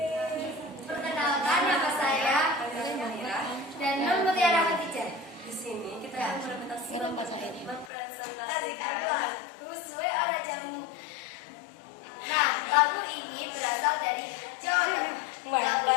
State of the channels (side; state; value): right; drops out; at 7.9 s